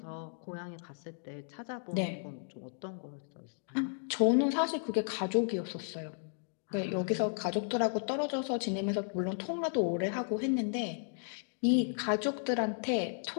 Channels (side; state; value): right; silent; digital silence